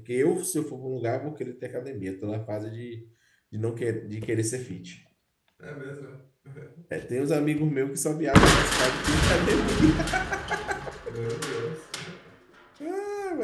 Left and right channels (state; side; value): identical; both; correlation 1.00